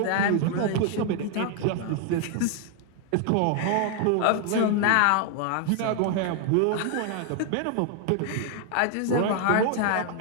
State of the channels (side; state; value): both; different; correlation 0.00